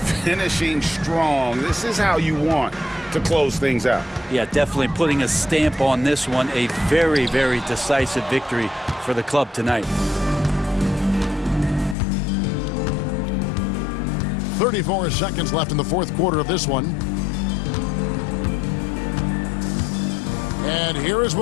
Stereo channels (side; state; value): right; drops out; at 12.0 s